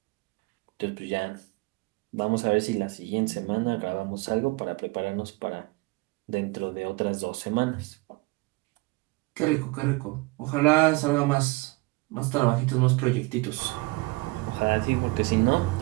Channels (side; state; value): left; quieter; 24.7 dB